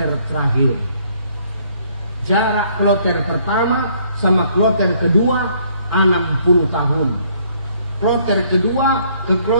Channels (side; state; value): both; inverted; correlation -0.64